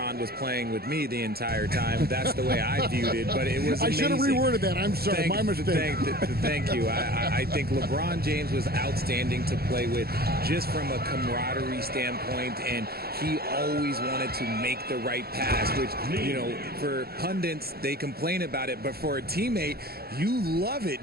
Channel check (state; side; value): late; left; 0.45 ms